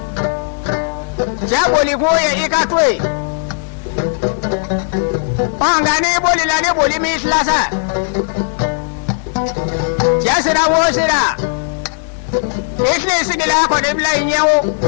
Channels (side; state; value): right; silent; digital silence